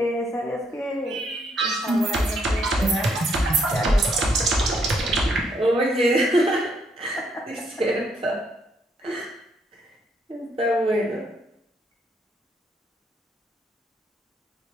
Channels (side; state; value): both; normal; correlation 0.72